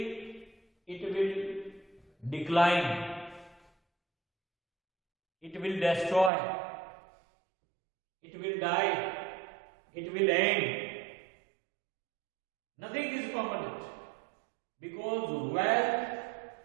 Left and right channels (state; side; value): drops out; left; at 6.3 s